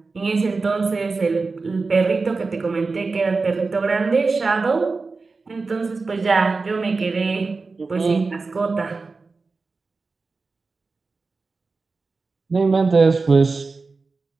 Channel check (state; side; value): quieter; left; 4.0 dB